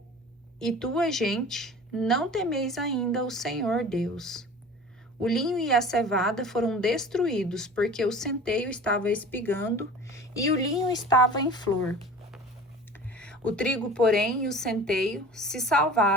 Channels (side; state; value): both; normal; correlation 0.41